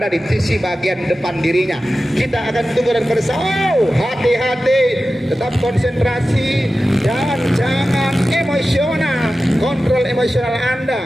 di sisi bagian depan dirinya. Kita akan tunggu dan bersama. Hati-hati, tetap konsentrasi dan jangan emosional. Kontrol emosional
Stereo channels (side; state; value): both; normal; correlation 0.94